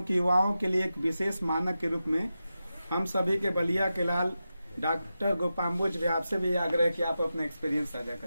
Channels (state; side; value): inverted; both; correlation -0.91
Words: कि युवाओं के लिए एक विशेष मानक के रूप में हम सभी के बलिया के लाल डॉक्टर गोपाम्बुज भी आपसे भी आग्रह कि आप अपने एक्सपीरियंस साझा